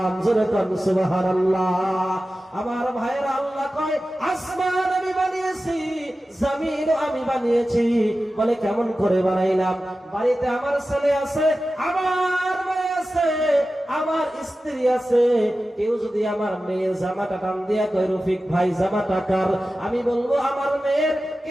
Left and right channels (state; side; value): normal; both; correlation 0.94